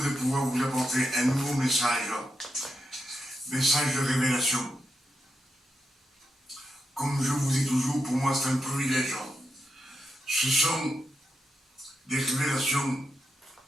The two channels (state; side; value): normal; both; correlation 0.85